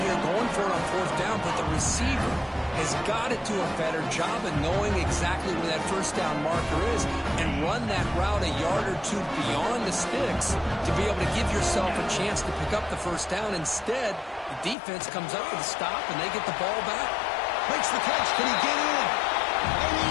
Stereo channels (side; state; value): right; drops out; at 14.8 s